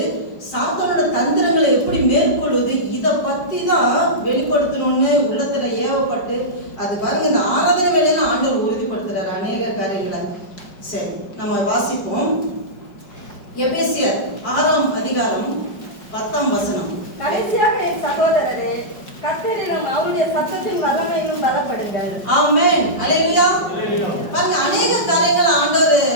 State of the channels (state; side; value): late; right; 5.1 ms